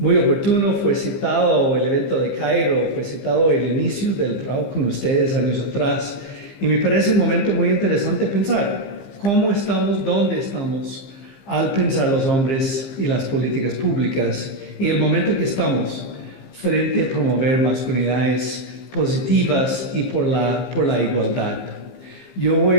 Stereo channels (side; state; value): right; late; 15 ms